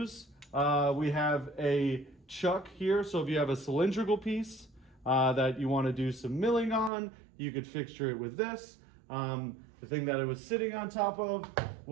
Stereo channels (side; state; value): left; drops out; at 6.9 s